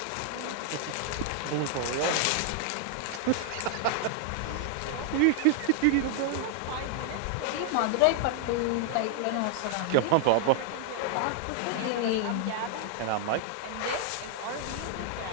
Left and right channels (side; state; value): both; different; correlation 0.00